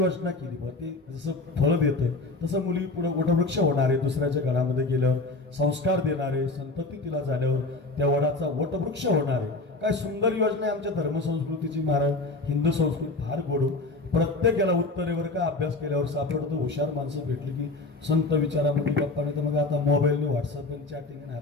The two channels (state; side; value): quieter; right; 3.2 dB